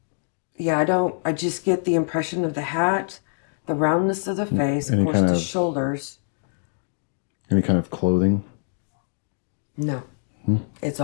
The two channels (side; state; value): right; silent; digital silence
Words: just get the impression of the hat, the roundness of the face, of course, the shoulders. Any kind of clothing? No. It's